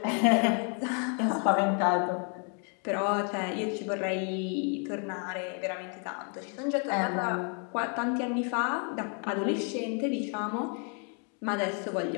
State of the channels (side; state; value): right; quieter; 39.9 dB